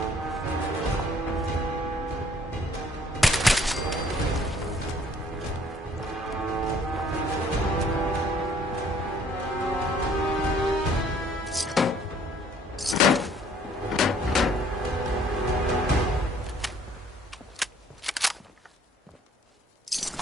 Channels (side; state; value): both; normal; correlation 0.59